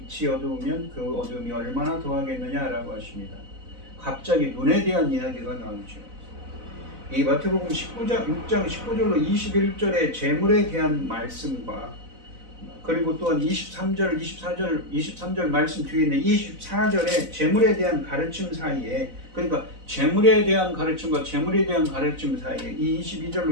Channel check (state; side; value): late; left; 4.0 ms